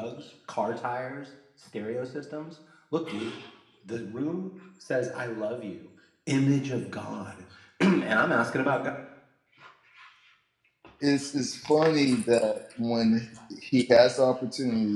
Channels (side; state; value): both; identical; correlation 1.00